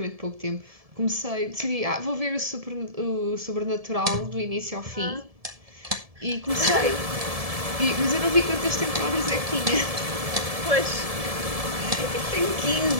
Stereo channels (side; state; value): left; late; 1.7 ms